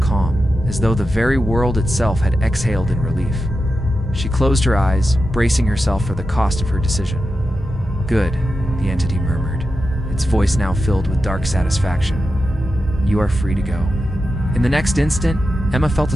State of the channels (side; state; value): both; normal; correlation 0.90